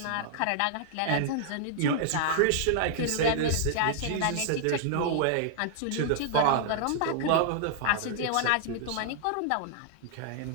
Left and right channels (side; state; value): both; different; correlation -0.01